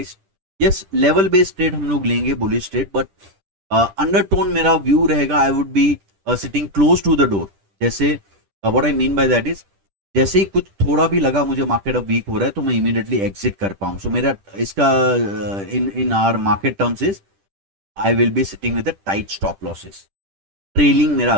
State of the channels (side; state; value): left; late; 10 ms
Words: Yes level based trade हम लोग लेंगे, बुलिश ट्रेड, बट अंडरटोन मेरा व्यू रहेगा I would be sitting close to the door. जैसे what I mean by that is जैसे ही कुछ थोड़ा भी लगा मुझे मार्केट अब वीक हो रहा है तो मैं इमीडिएटली एग्जिट कर पाऊं। सो मेरा इसका in in our market terms is I will be sitting with tight stop losses, trailing मेरा